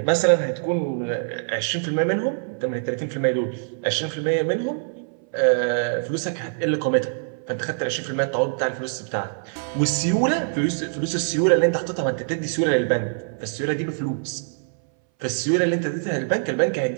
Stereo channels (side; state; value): left; silent; 61 dB below the other